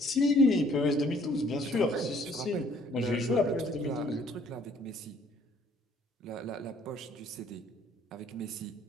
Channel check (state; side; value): normal; both; correlation 0.61